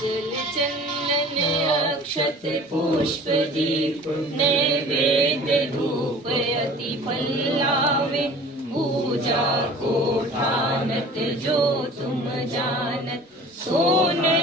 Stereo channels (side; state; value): both; normal; correlation 0.45